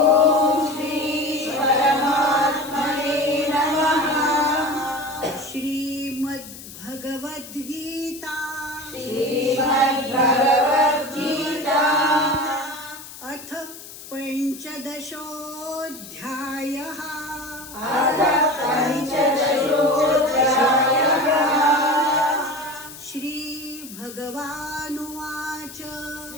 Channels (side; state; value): left; noise; hiss, 15 dB below the sound